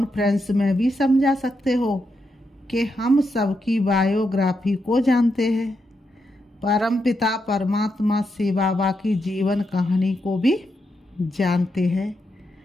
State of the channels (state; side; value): normal; both; correlation 0.83